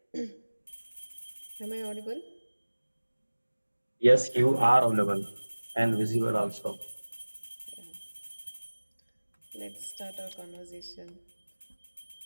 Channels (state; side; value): inverted; both; correlation -1.00